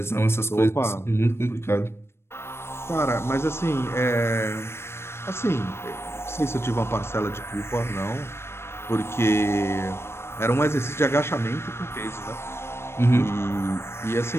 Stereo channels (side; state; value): right; late; 0.12 ms